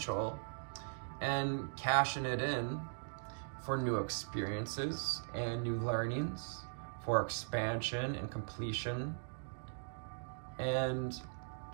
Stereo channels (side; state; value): left; silent; digital silence